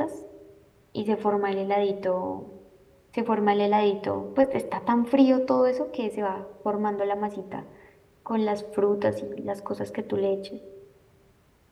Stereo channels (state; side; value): identical; both; correlation 1.00